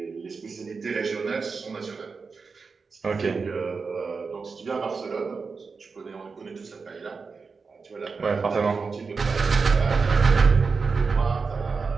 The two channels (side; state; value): left; quieter; 4.8 dB